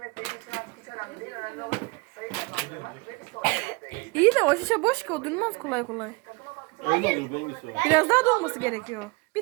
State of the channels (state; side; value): quieter; left; 26.9 dB